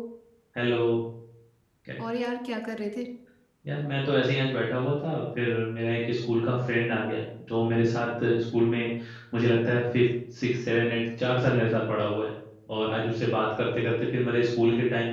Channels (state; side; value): identical; both; correlation 1.00